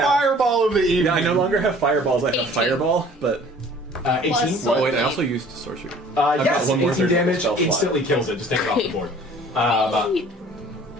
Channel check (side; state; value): both; normal; correlation 0.51